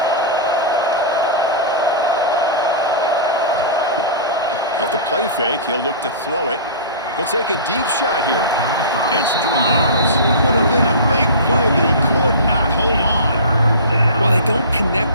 Off the play fake, he'll look to throw it. He'll take a deep shot here. It's dropped. Would have been a big play, but he could not hold on. Well, they don't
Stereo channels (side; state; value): both; inverted; correlation -0.32